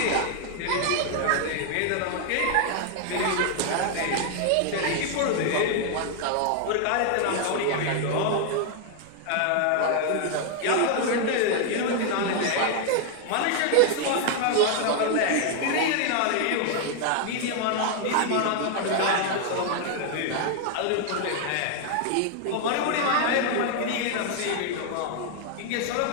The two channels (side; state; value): both; different; correlation 0.00